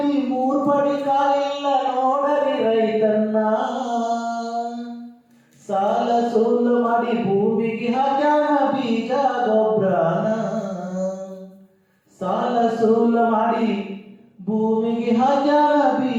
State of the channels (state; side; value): identical; both; correlation 1.00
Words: 3 ಪಡಿ ಕಾಲಿಲ್ಲ ನೋಡರಿ ರೈತನ್ನ ಸಾಲ ಸೂಲ ಮಾಡಿ ಭೂಮಿಗೆ ಹಾಕ್ಯಾನ ಬೀಜ ಗೊಬ್ಬರನ ಸಾಲ ಸೂಲ ಮಾಡಿ ಭೂಮಿಗೆ ಹಾಕ್ಯಾನ